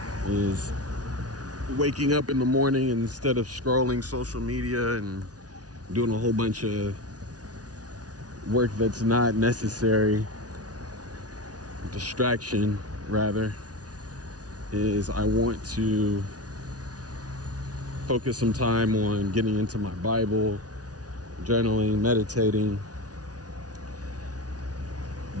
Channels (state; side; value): late; left; 0.68 ms